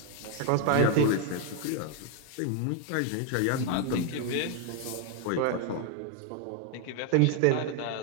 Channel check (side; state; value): both; different; correlation 0.01